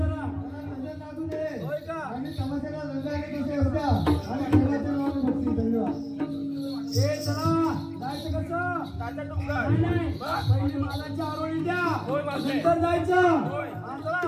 होय का आम्ही तमाशाला रंगायला कसे होत्या आणि देवाच्या नावाने बघतील धन्यवाद ए चला जायचं कसं ताजा डोंगर नाही पहिले मालाची आरोळी द्या नंतर जायचं चला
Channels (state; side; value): identical; both; correlation 1.00